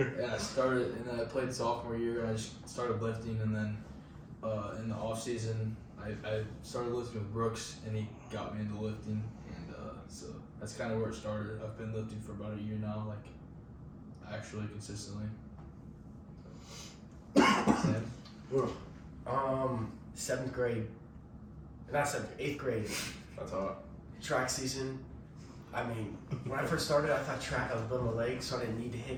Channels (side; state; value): both; identical; correlation 1.00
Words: I played sophomore year and I just started lifting, and then in the off season I started lifting with Brooks and he got me into lifting, and so that's kind of where it started. I've been lifting for about a year now, like actually consistently. Sam? Seventh grade. Not seventh, eighth grade. That's hot. Track season. I mean, when I first started, I thought track, I was building my legs, so I didn't need to